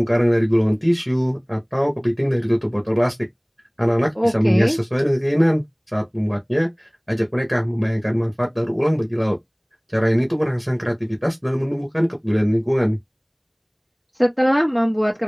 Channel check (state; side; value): identical; both; correlation 1.00